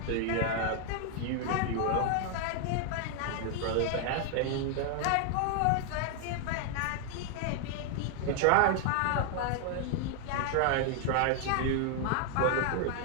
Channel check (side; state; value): both; different; correlation 0.00